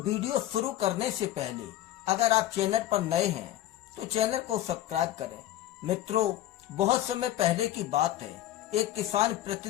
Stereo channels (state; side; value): quieter; right; 13.7 dB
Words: शुरू करने से पहले अगर आप चैनल पर नए हैं तो चैनल को सब्सक्राइब करें। मित्रों, बहुत समय पहले की बात है। एक किसान